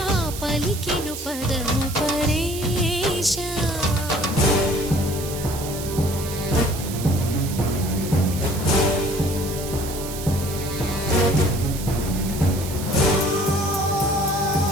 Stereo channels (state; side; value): noise; right; hiss, 10 dB below the sound